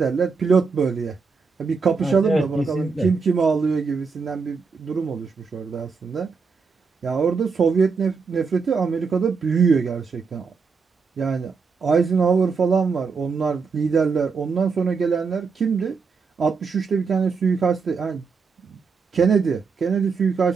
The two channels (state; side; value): quieter; left; 5.1 dB